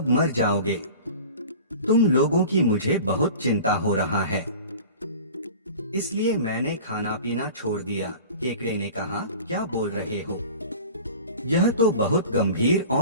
मर जाओगे। तुम लोगों की मुझे बहुत चिंता हो रहा है, इसलिए मैंने खाना पीना छोड़ दिया। केकड़े ने कहा, क्या बोल रहे हो? यह तो बहुत गंभीर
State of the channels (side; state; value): both; inverted; correlation -0.39